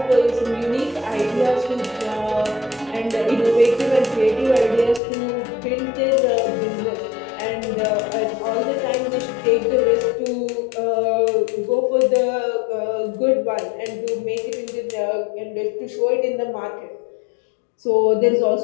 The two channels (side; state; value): right; drops out; at 5.0 s